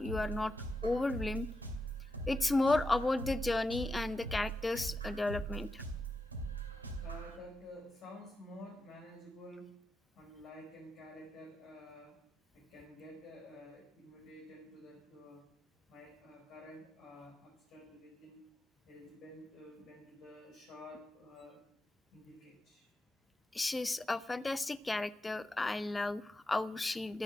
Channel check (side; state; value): both; normal; correlation 0.87